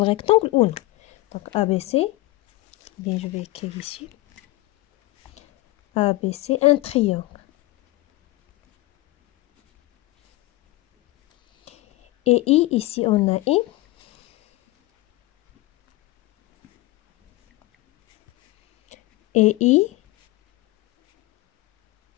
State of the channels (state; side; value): quieter; right; 19.5 dB